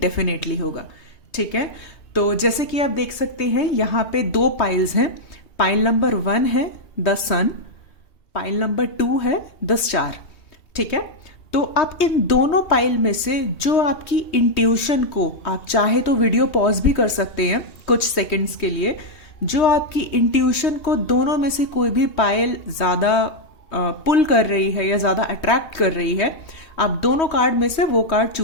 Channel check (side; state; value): right; late; 3.2 ms